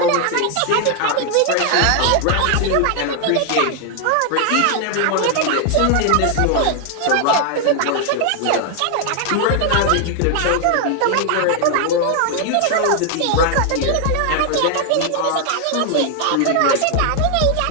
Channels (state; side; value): different; both; correlation 0.00